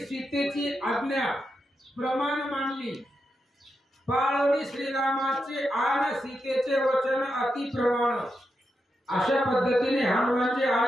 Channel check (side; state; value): both; normal; correlation 0.86